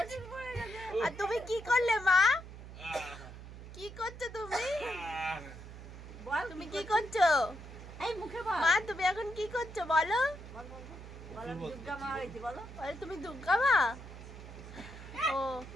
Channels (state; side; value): noise; right; hum, 13 dB below the sound